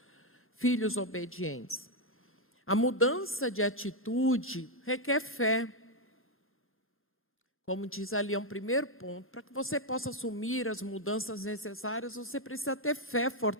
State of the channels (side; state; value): both; normal; correlation 0.02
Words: filhos obedientes. A mudança de atitude requer fé. Como diz ali, é um primeiro ponto. Para que você possa assumir as mudanças necessárias, você precisa ter fé